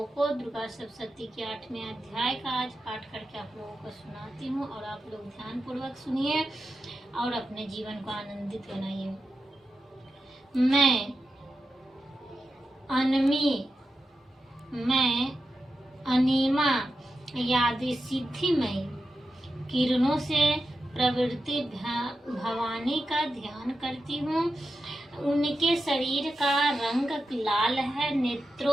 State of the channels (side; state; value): both; normal; correlation 0.90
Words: को दुर्गा सप्तशती के 8वें अध्याय का आज पाठ करके आप लोगों को सुनाती हूँ और आप लोग ध्यान पूर्वक सुनिए और अपने जीवन को आनंदित बनाइए। मैं अनिमा यादि सिद्धिमयी किरणों से प्रवृत्ति भवानी का ध्यान करती हूँ। उनके शरीर का रंग लाल है,